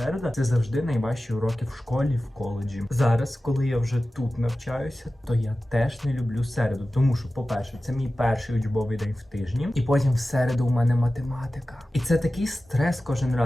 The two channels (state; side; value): normal; both; correlation 0.95